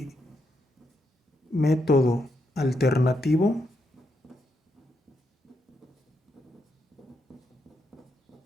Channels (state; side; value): normal; both; correlation 0.81